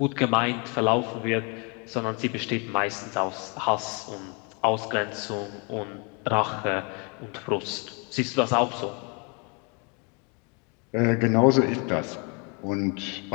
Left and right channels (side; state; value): right; quieter; 33.6 dB